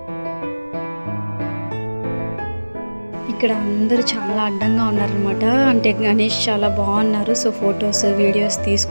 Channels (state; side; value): inverted; both; correlation -1.00